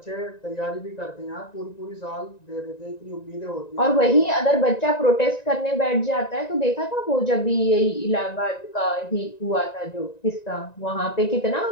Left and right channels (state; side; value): late; right; 1.9 ms